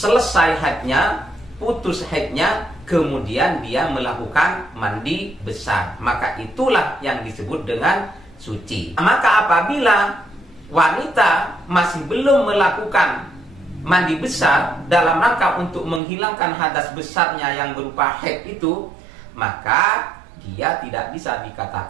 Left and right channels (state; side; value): drops out; left; at 16.0 s